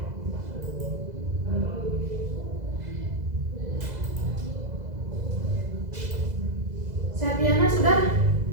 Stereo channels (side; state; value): left; late; 2.0 ms